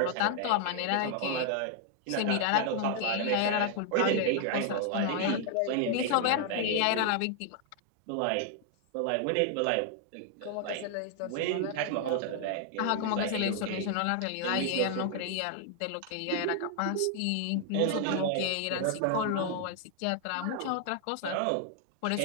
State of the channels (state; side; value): different; both; correlation 0.00